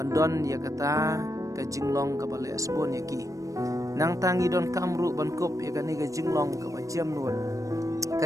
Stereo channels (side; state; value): left; late; 0.16 ms